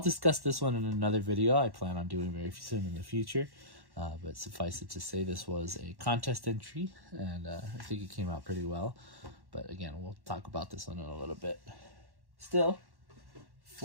this one in another video I plan on doing very soon in the future. But suffice it to say, this was a contest entry, and I think it came out pretty well. But again, we'll talk about this one in a little bit. Still,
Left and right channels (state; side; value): late; left; 1.1 ms